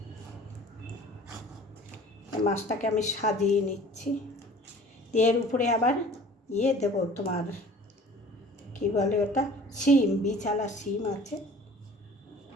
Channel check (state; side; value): normal; both; correlation 0.46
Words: মাছটাকে আমি সাজিয়ে নিচ্ছি, দিয়ে এর উপরে আবার দেবো, তোমার কী বলে ওটা, শিম, বিছালা শিম আছে,